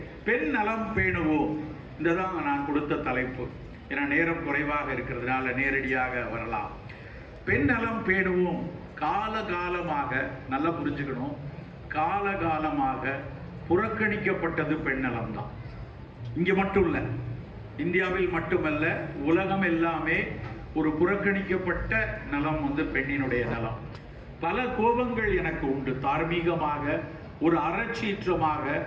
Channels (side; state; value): both; identical; correlation 1.00